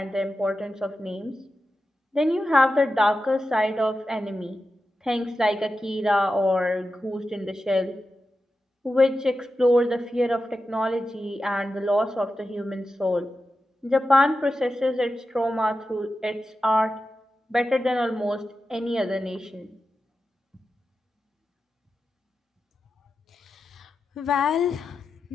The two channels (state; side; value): normal; both; correlation 0.91